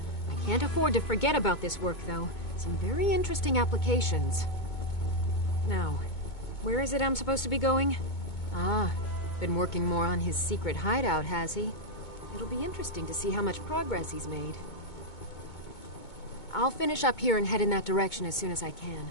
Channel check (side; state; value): right; late; 2.2 ms